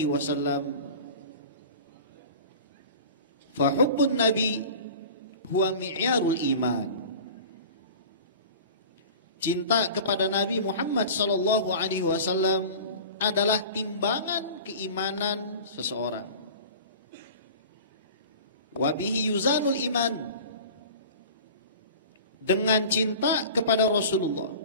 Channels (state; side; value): inverted; both; correlation -0.38